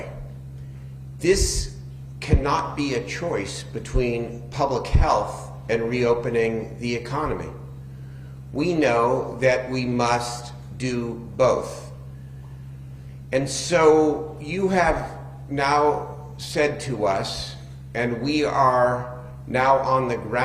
This cannot be a choice between public health and reopening the economy. We know that we must do both. And so you have now said to us, and we are now on the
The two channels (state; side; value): identical; both; correlation 1.00